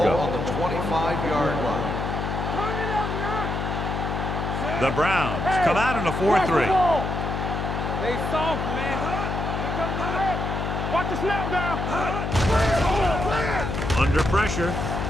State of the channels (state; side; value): noise; left; hum, 2 dB below the sound